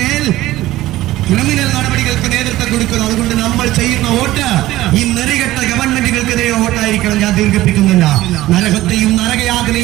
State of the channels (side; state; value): left; quieter; 16.2 dB